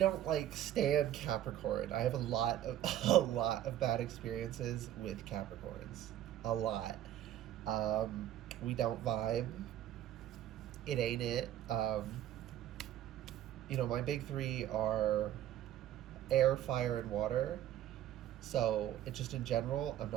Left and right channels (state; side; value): quieter; left; 12.1 dB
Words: like stand Capricorn. I have a lot of bad experiences with Capricorns. A lot. We don't vibe. It ain't it. My big three are air, fire, and water. So it just in general, I'm